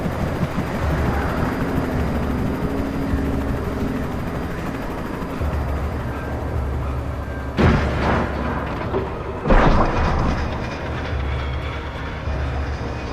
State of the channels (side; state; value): both; identical; correlation 1.00